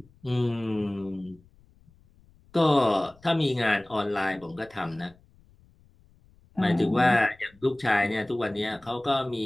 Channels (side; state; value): left; noise; rumble, 29 dB below the sound